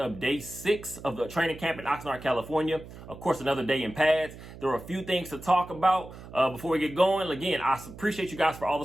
day 6 of the training camp in Oxnard, California. Of course, another day in pads. There are a few things to talk about before we get going. Again, I appreciate you guys for all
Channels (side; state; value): right; noise; hum, 15 dB below the sound